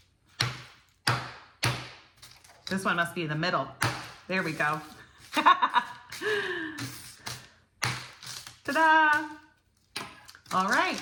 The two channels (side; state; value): both; identical; correlation 1.00